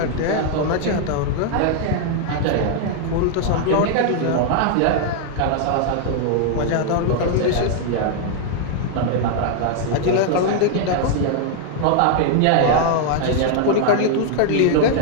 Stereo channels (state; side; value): different; both; correlation 0.00